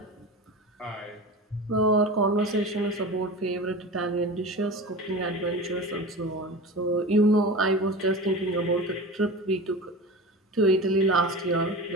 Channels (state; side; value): normal; both; correlation 0.31